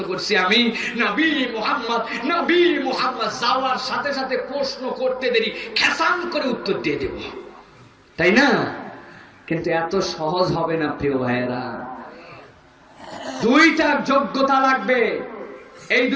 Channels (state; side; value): identical; both; correlation 1.00